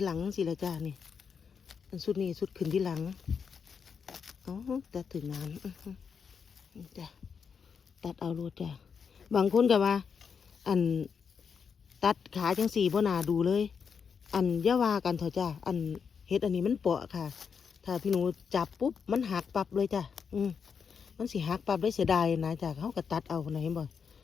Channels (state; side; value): quieter; right; 6.3 dB